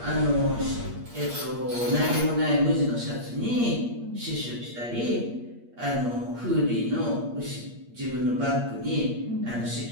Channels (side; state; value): left; late; 8.5 ms